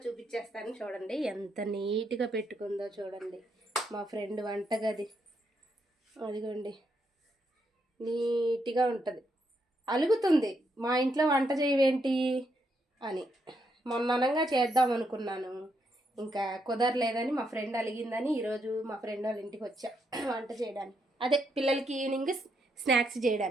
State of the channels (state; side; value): normal; both; correlation 0.78